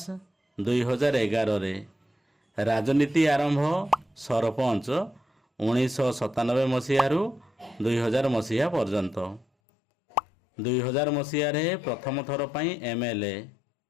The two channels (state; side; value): drops out; right; at 9.5 s